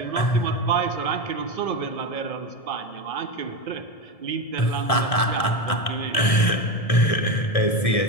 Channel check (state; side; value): late; right; 1.7 ms